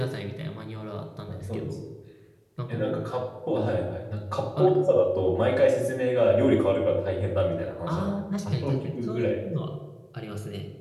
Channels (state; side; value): identical; both; correlation 1.00